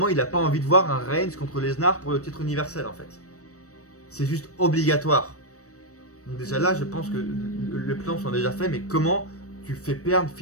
il a pas envie de voir un Reigns contre Lesnar pour le titre universel en fait. C'est juste obligatoire. Donc déjà là je pense que le plan sont déjà faits, mais comment tu fais perdre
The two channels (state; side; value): late; right; 0.65 ms